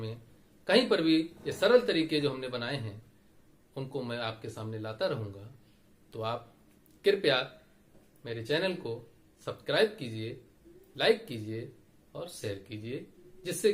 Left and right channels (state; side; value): identical; both; correlation 1.00